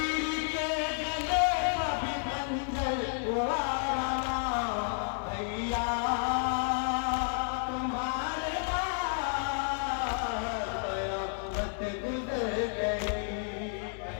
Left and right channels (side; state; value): right; silent; digital silence